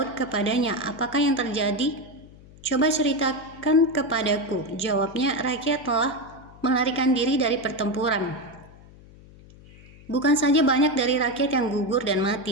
kepadanya, "Apakah yang terjadi? Coba ceritakan kepadaku." Jawabnya, "Rakyat telah melarikan diri dari pertempuran. Bukan saja banyak dari rakyat yang gugur dan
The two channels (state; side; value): noise; left; hum, 22 dB below the sound